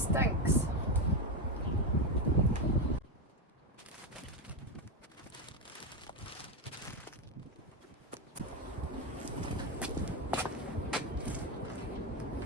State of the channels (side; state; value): both; normal; correlation 0.10